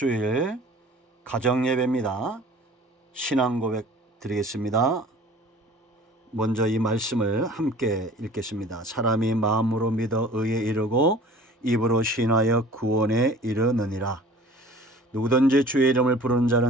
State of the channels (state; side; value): normal; both; correlation 0.46